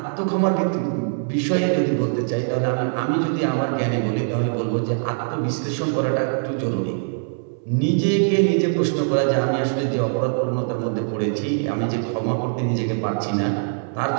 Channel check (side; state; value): left; silent; 64 dB below the other